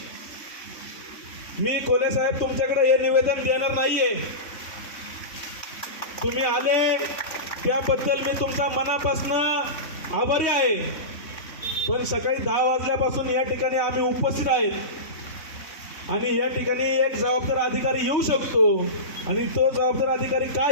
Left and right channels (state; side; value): late; right; 3.6 ms